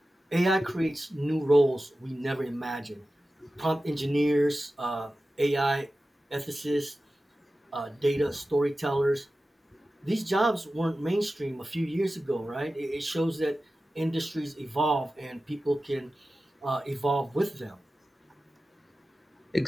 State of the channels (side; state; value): both; normal; correlation 0.94